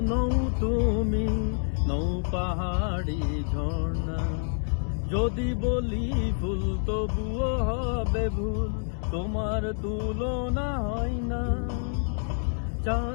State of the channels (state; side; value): silent; right; 60 dB below the other